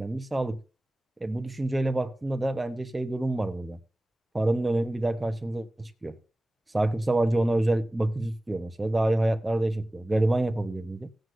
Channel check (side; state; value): both; normal; correlation 0.97